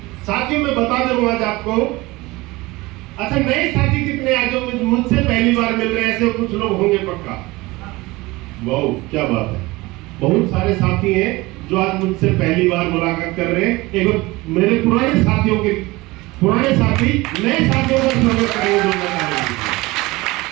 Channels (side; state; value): left; quieter; 21.4 dB